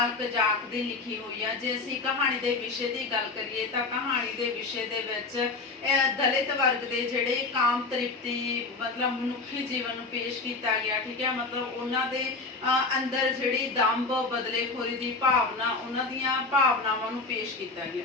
ਕਜ਼ਾਕ ਦੀ ਲਿਖੀ ਹੋਈ ਹੈ। ਜੇ ਅਸੀਂ ਕਹਾਣੀ ਦੇ ਵਿਸ਼ੇ ਦੀ ਗੱਲ ਕਰੀਏ ਤਾਂ ਕਹਾਣੀ ਦੇ ਵਿਸ਼ੇ ਦੇ ਵਿੱਚ ਦਲਿਤ ਵਰਗ ਦੇ ਜਿਹੜੇ ਕਾਮ ਤ੍ਰਿਪਤੀ ਮਤਲਬ ਮਨੁੱਖੀ ਜੀਵਨ ਨੂੰ ਪੇਸ਼ ਕੀਤਾ ਗਿਆ। ਠੀਕ ਹੈ, ਮਤਲਬ ਉਹਨਾਂ ਦੇ ਅੰਦਰ ਜਿਹੜੀ ਦੰਭ ਬਦਲੇਖੋਰੀ ਦੀ ਭਾਵਨਾ, ਉਹਨਾਂ ਦੀਆਂ ਭਾਵਨਾਵਾਂ ਨੂੰ ਪੇਸ਼ ਕੀਤਾ ਗਿਆ।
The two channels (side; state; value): right; quieter; 3.8 dB